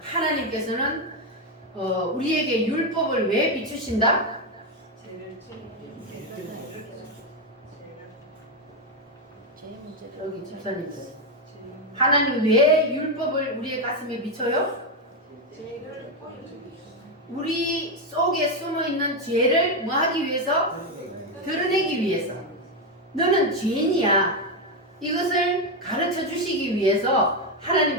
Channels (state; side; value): normal; both; correlation 0.07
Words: 하나님께서는 우리에게 율법을 왜 비추신다? 여기 집사님들, 하나님 왜 율법을 우리의 가슴에 비춰요? 우리 속에 숨어있는 죄를 뭐 하기 위해서? 드러내기 위해서. 너는 죄인이야. 이것을 가르쳐 주시기 위해서